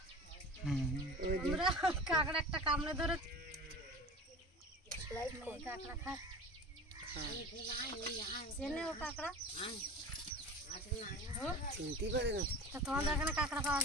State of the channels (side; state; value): both; normal; correlation 0.36